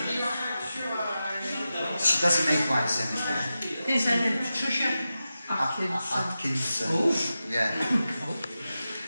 She doesn't make wines anymore. Is her name Patricia Atkinson. Yeah.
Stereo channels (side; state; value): both; inverted; correlation -0.92